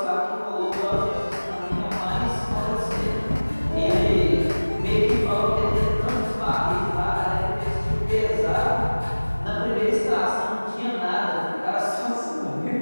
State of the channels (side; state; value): both; inverted; correlation -1.00